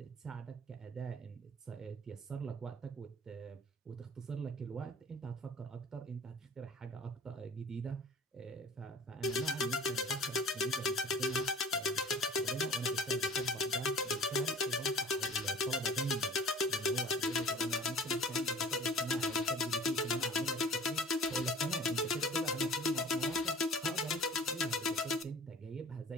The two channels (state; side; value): normal; both; correlation 0.44